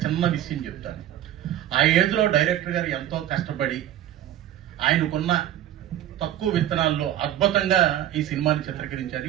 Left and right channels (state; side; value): quieter; left; 12.2 dB